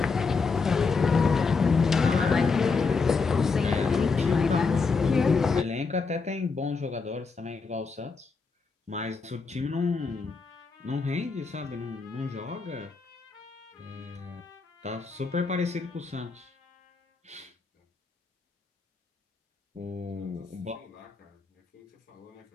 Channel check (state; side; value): quieter; right; 4.6 dB